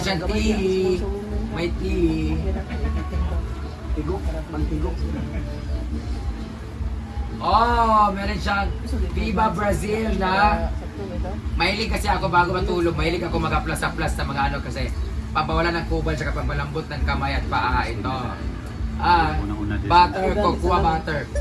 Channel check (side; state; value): both; identical; correlation 1.00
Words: tea. May tea. Tigok. Pantigok. Oh, meron siyang Viva Brazil na mahilig kasi ako bago matulog, mahilig ako mag-aplas-aplas sa mga ano kasi pampawala ng kubal sa pampalambot ng kamay at paa ito. Butter, cocoa butter.